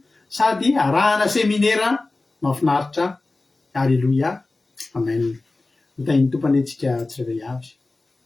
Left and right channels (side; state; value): right; quieter; 3.3 dB